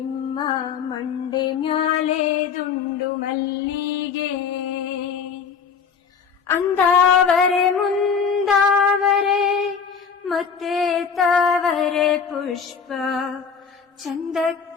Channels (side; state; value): right; quieter; 6.2 dB